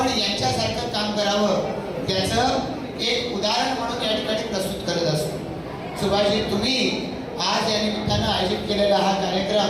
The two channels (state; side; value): identical; both; correlation 1.00